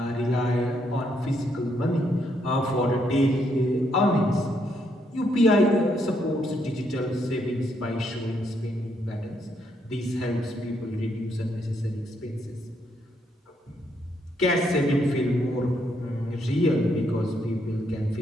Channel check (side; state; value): both; normal; correlation 0.75